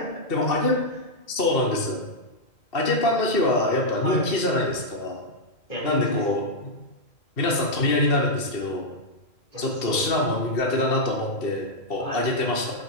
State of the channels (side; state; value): right; late; 2.7 ms